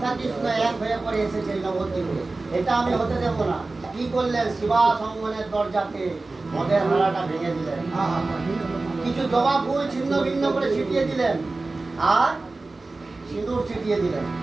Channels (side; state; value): left; quieter; 3.4 dB